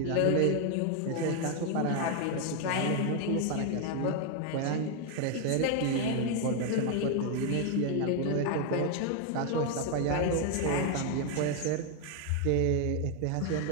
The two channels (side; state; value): both; different; correlation 0.00